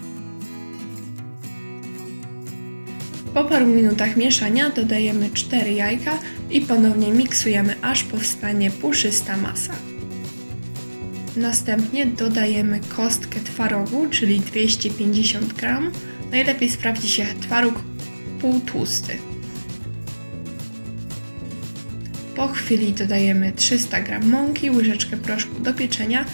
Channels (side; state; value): both; inverted; correlation -1.00